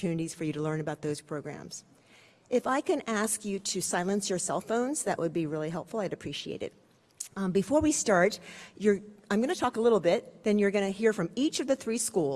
for you to learn about those programs. If I can ask you to silence your cell phones, that would be really helpful. I'd appreciate it. Before we start, I'm going to talk a little bit, then you're going to hear from each of the 3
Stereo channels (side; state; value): both; identical; correlation 1.00